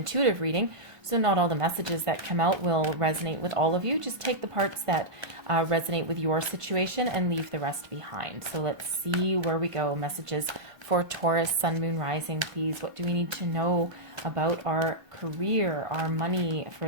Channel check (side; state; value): left; late; 1.5 ms